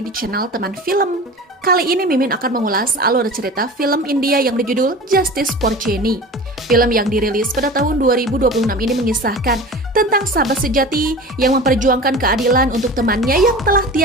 di channel Teman Film. Kali ini Mimin akan mengulas alur cerita film India yang berjudul Justice for Jenny. Film yang dirilis pada tahun 2026 ini mengisahkan tentang sahabat sejati yang memperjuangkan keadilan untuk temannya yang telah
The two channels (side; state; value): both; normal; correlation 0.35